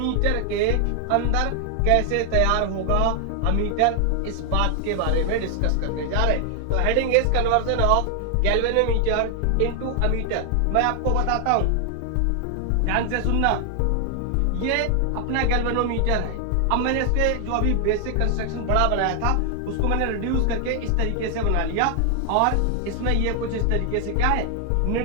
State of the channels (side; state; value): both; different; correlation 0.00